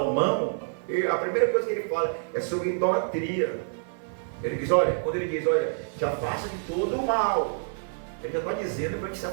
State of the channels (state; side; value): silent; left; 60 dB below the other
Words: a primeira coisa que ele fala é sobre idolatria. Ele diz, quando ele diz, te afasta de todo o mal, ele já está dizendo para ele se